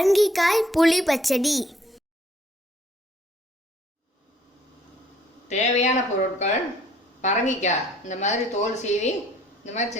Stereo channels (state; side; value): normal; both; correlation 0.61